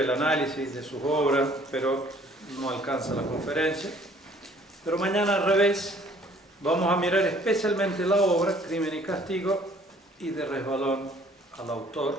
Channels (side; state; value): both; normal; correlation 0.58